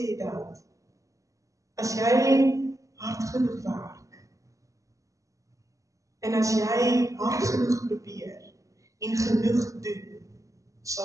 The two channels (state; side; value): late; left; 0.16 ms